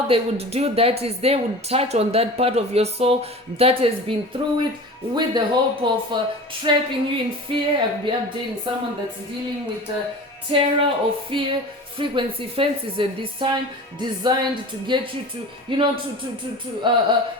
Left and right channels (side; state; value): both; normal; correlation 0.36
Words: they would do that is they would touch on that part of your soul that has been through it, with the hope of trapping you in fear. I'll be updating someone that's dealing with terror or fear frequency fences at this time, designed to get you to